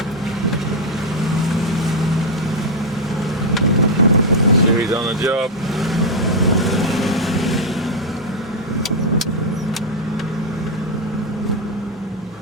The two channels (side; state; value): both; normal; correlation 0.01